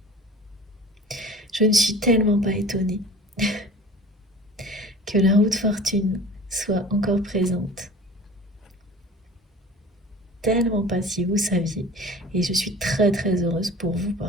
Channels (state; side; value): normal; both; correlation 0.41